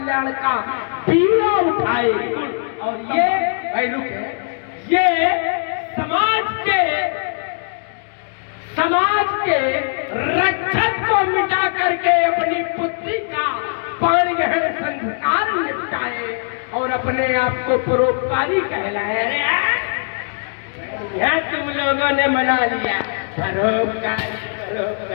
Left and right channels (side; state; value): right; silent; digital silence